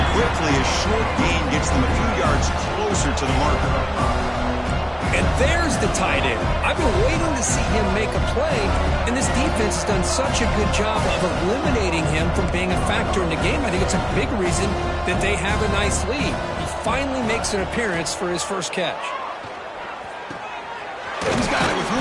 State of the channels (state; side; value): identical; both; correlation 1.00